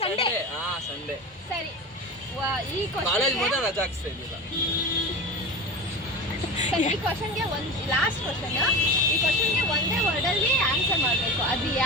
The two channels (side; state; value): both; normal; correlation 0.29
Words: ಸಂಡೇ. ಸಂಡೇ ಸರಿ ಈ ಕಾಲೇಜ್ ಕ್ವಶನ್ಗೆ ಮಾತ್ರ ರಜೆ ಹಾಕ್ಸ್ತಾ ಇದ್ದಿಲ್ಲ. ಈ ಕ್ವಶನ್ಗೆ ಒಂದು ಲಾಸ್ಟ್ ಕ್ವಶನ್. ಈ ಕ್ವಶನ್ಗೆ ಒಂದೇ ವರ್ಡಲ್ಲಿ ಆನ್ಸರ್ ಮಾಡಬೇಕು. ಅದು